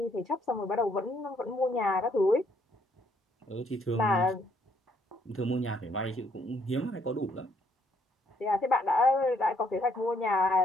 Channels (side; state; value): both; normal; correlation 0.68